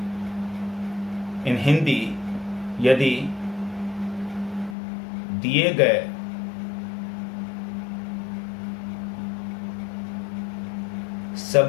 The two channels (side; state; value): right; drops out; at 4.8 s